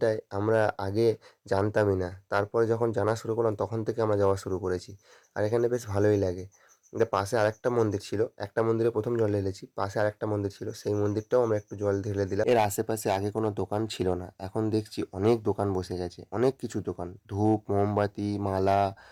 আমরা আগে জানতামই না, তারপরে যখন জানা শুরু করলাম তখন থেকে আমরা যাওয়া শুরু করেছি। আর এখানে বেশ ভালোই লাগে। পাশে আরেকটা মন্দির ছিল, একটা মন্দিরে প্রথম জল ঢেলেছি, পাশে আরেকটা মন্দির ছিল, সেই মন্দিরটাও আমরা একটু জল ঢেলে দিলাম। এর আশেপাশে আগে কোনো দোকান ছিল না, এখন দেখছি অনেক দোকান বসে গেছে, অনেক কিছু দোকান, ধূপ, মোমবাতি, মালা,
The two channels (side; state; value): both; identical; correlation 1.00